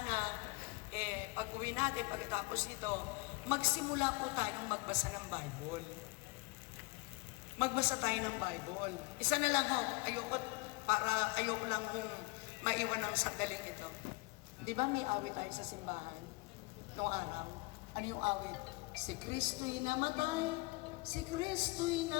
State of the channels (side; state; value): right; quieter; 25.8 dB